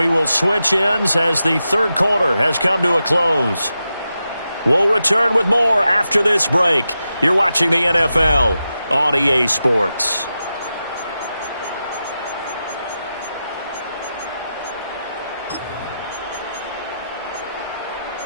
will switch ends as the 3rd quarter has come to a close. We'll return with more after this break. You're watching the NFL on EA Sports.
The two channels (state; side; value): inverted; both; correlation -0.89